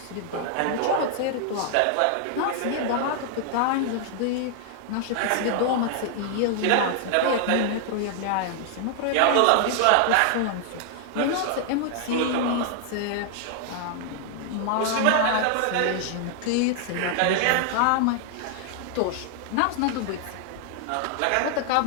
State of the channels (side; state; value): both; different; correlation 0.00